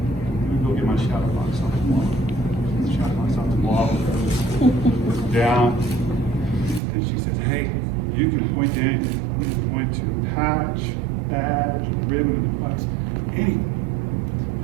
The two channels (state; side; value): drops out; left; at 6.8 s